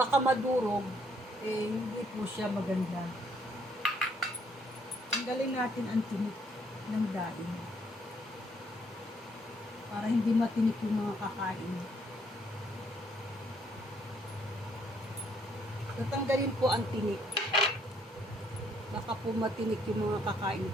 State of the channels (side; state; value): both; normal; correlation 0.68